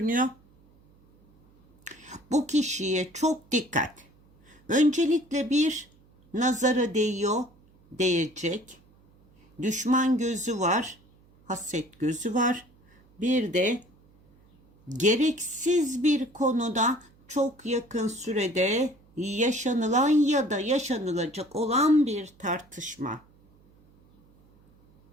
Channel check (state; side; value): noise; right; hum, 30 dB below the sound